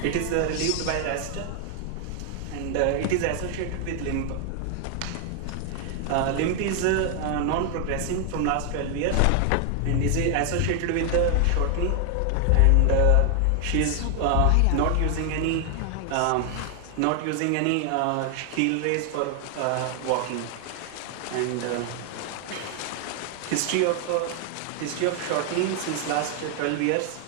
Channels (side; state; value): both; different; correlation 0.00